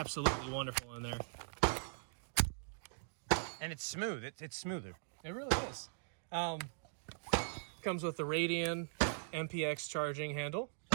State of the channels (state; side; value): silent; left; digital silence